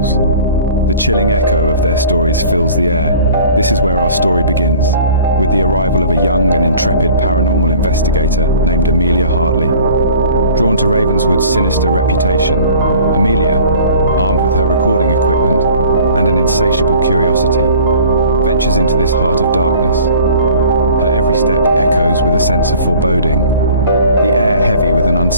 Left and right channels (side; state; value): both; inverted; correlation -0.47